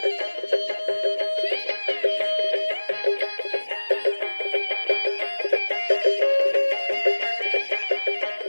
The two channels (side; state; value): both; inverted; correlation -1.00